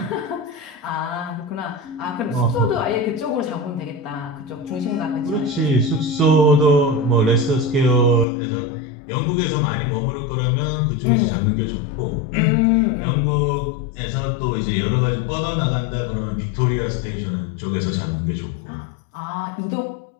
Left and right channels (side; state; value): right; drops out; at 8.2 s